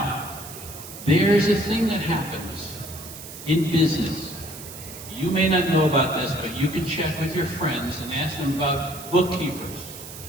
there's a thing that happens in business. You may not know about this, but you can check with your friends and ask them about bookkeepers.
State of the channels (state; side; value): noise; right; hiss, 13 dB below the sound